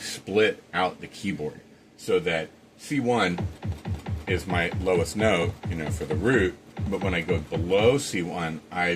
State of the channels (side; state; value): both; identical; correlation 1.00